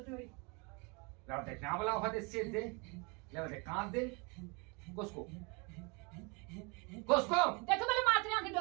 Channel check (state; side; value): quieter; left; 30.8 dB